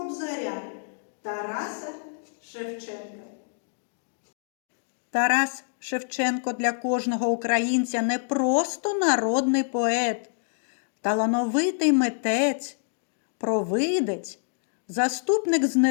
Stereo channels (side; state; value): right; silent; digital silence